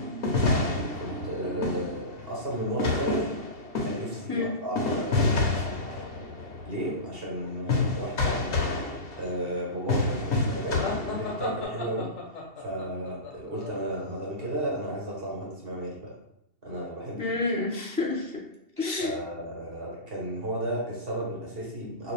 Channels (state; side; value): late; left; 2.7 ms